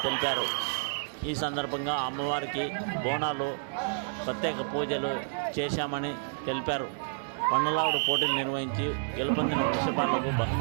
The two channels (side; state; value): left; silent; digital silence